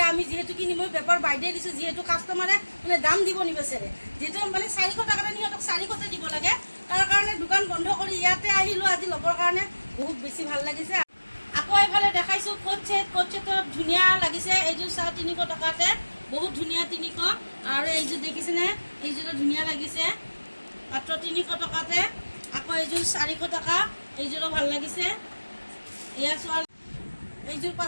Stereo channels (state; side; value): inverted; both; correlation -1.00